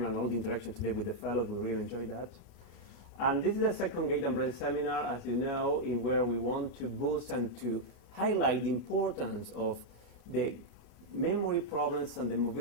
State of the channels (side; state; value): right; late; 32 ms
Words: and all the interaction today with the fellows. We really enjoyed that. And this is the second Gait and Brain seminar, as you know, in where we want to boost and to highlight the importance of the memory problems and the